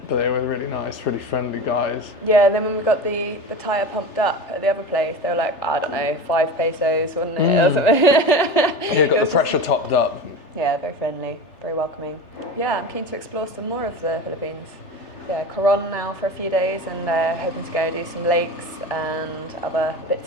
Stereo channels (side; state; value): right; late; 3.3 ms